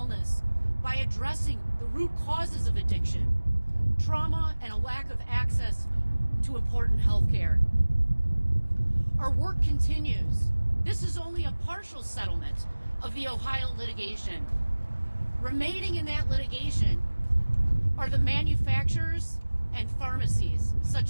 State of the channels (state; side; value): inverted; both; correlation -1.00